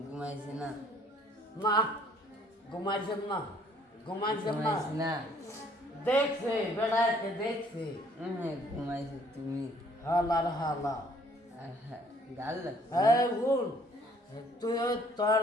ঘুমাইছি না। না ঘুমাইছে না, ঘুমাইছে না, ঘুমাইছি না। দেখছে বেড়াইতে দেখছে। ঘুমাইছি তুমি। হালার হালা গাল ভুল তুই তোর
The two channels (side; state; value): both; normal; correlation 0.61